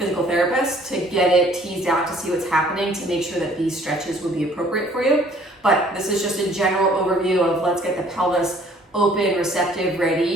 therapist to get it teased out to see what's happening, to make sure that these stretches would be appropriate for you. But this is just a general overview of let's get the pelvis open, receptive,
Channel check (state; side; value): normal; both; correlation 0.57